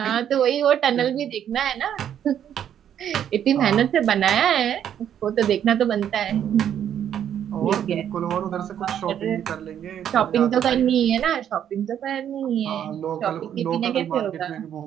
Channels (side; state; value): left; quieter; 9.7 dB